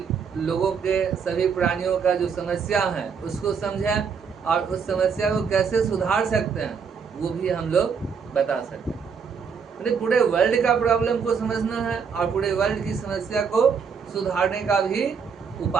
लोगों के, सभी प्राणियों का जो समस्या है उसको समझें और उस समस्या को कैसे सुधार सकते हैं वो भी हम लोग बता सकते हैं। यानी पूरे वर्ल्ड का प्रॉब्लम को समझना है और पूरे वर्ल्ड की समस्या को सुधारने का भी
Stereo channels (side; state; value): left; quieter; 6.2 dB